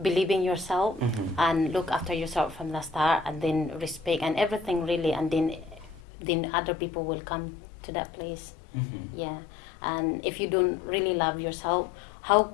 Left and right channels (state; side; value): drops out; right; at 6.0 s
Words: yourself and look after yourself from the start, and then respect and everything really, and then other people will come to that place. Yeah. And if you don't really love yourself, how